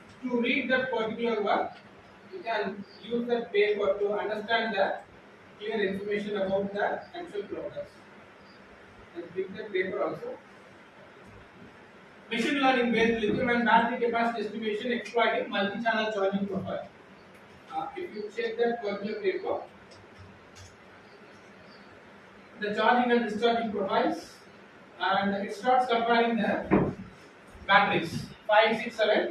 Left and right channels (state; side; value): identical; both; correlation 1.00